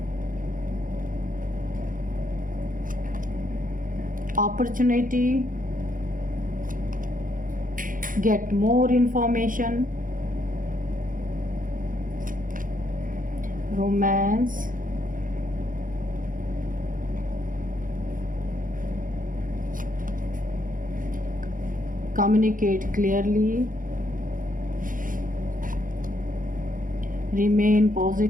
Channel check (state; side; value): late; left; 0.39 ms